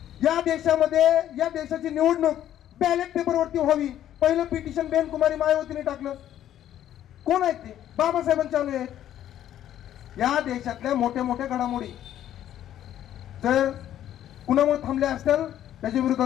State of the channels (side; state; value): right; quieter; 11.5 dB